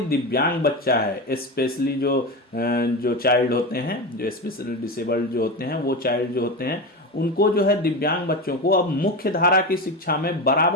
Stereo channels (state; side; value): normal; both; correlation 0.21